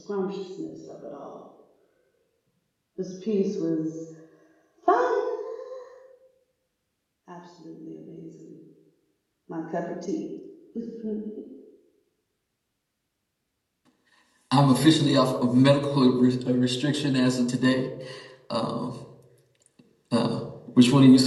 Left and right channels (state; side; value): identical; both; correlation 1.00